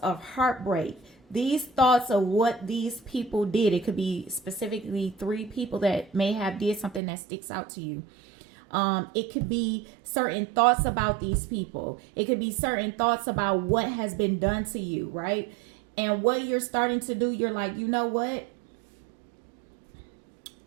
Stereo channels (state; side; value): drops out; left; at 7.0 s